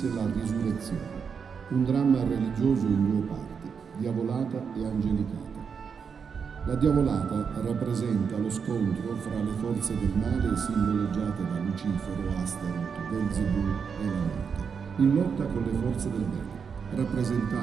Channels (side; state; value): left; quieter; 6.3 dB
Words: La Risurrezione, un dramma religioso in due parti, Diavolata e Angelicata. La Diavolata rappresenta lo scontro fra le forze del male simboleggiate da Lucifero, Astaroth, Belzebù e la morte, in lotta con le forze del bene,